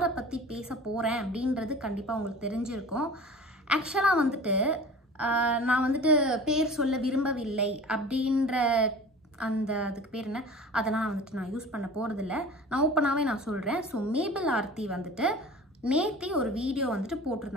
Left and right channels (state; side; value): normal; both; correlation 0.40